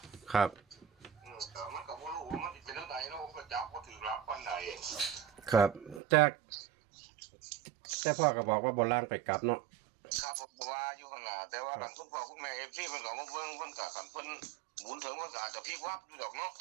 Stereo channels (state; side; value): drops out; left; at 6.0 s